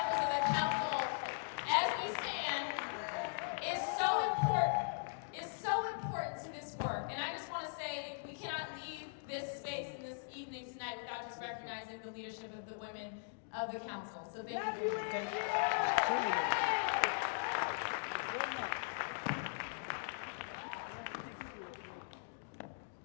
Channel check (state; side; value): silent; right; digital silence